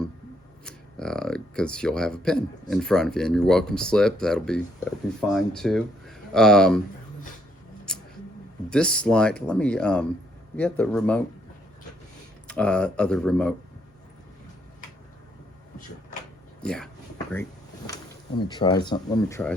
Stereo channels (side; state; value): both; normal; correlation 0.70